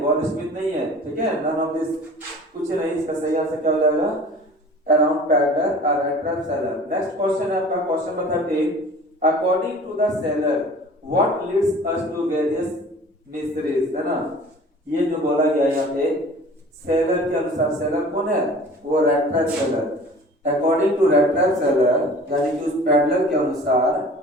गॉड स्मिथ नहीं है। ठीक है, नन ऑफ दिस, कुछ नहीं। इसका सही आंसर क्या हो जाएगा? अराउंड पैडलर और rat trap seller. Next question है आपका question number 13। According to the seller what leads us to various mysteries, है ना। ये जो बोला गया यहाँ पे सेलर के अनुसार, सेलर कौन है? वो rat trap seller. According to rat trap seller, यानी कि उस पैडलर के अनुसार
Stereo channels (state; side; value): normal; both; correlation 0.44